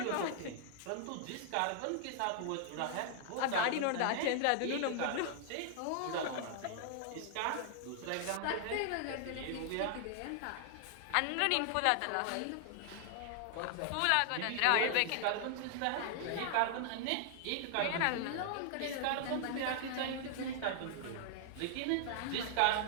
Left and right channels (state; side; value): different; both; correlation -0.01